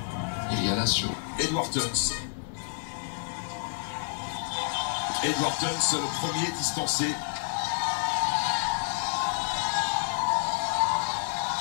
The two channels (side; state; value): right; silent; 55 dB below the other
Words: Il y a l'assaut. Edward Tuns. Edward Tuns, le premier distancé.